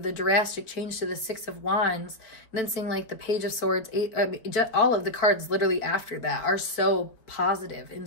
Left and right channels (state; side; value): late; right; 4.4 ms